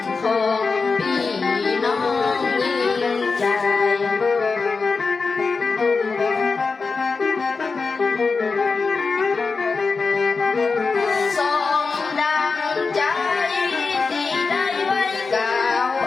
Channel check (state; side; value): quieter; right; 4.5 dB